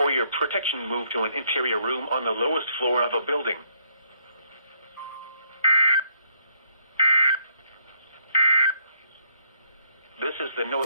your protection, move to an interior room on the lowest floor of a building. This is the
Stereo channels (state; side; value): inverted; both; correlation -0.71